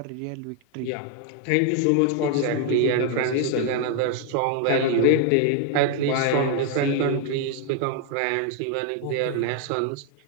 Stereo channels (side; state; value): both; different; correlation 0.00